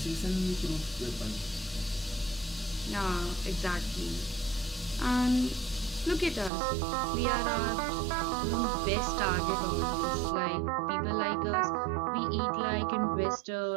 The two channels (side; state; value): left; drops out; at 6.5 s